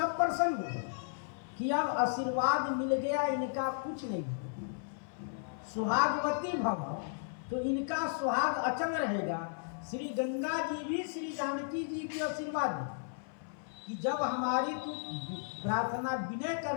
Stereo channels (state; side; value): silent; right; 55 dB below the other